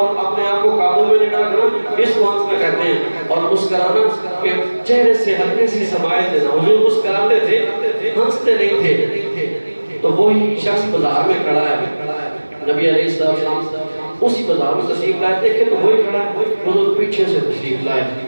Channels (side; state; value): both; inverted; correlation -1.00